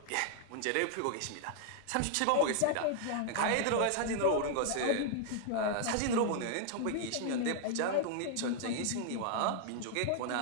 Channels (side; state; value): both; different; correlation -0.01